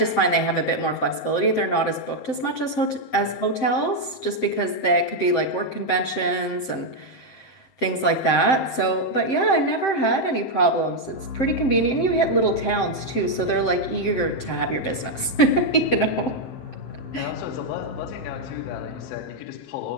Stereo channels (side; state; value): right; late; 7.7 ms